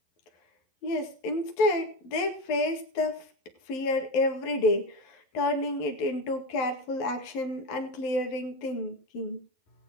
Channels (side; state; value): right; late; 11 ms